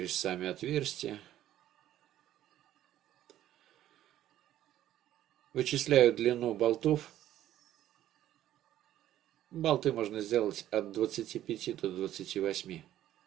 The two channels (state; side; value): quieter; left; 12.7 dB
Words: сами отверстия. Вычисляю длину болтов. Болты можно сделать от 25 до 28.